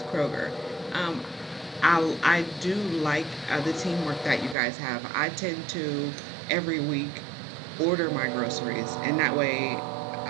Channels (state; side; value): drops out; left; at 4.5 s